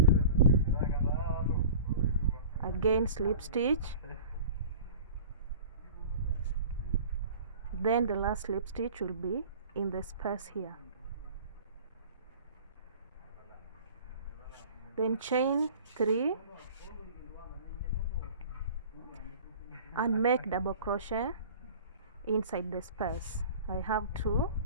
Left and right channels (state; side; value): inverted; both; correlation -0.41